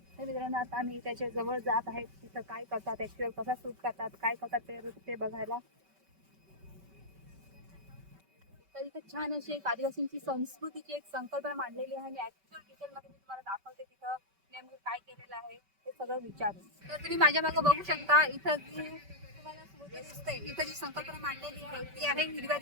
तर मित्रांनो, आता आम्ही त्याच्या जवळ जात आहेत. तिथं काय करतात, ऍक्च्युअल कसा शूट करतात, काय करतात ते बघायला. तर इथे छान अशी एक आदिवासींची संस्कृतीची एक संकल्पना मांडलेली आहे आणि ऍक्च्युअल डिटेल मध्ये मी तुम्हाला दाखवते तिथं नेमकं काय केलेलं आहे ते सगळं विचारून. तर तुम्ही माझ्या मागे बघू शकता, इथं जी तुम्हाला स्मृती दिसते, इथं जी संकल्पना मांडलेली आहे ती आहे हिरव्या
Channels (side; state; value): left; late; 5.2 ms